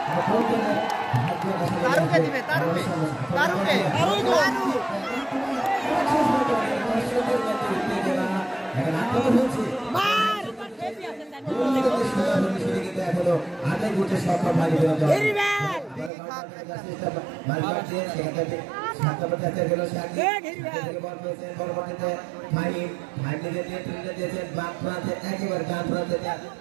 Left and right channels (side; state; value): left; drops out; at 16.1 s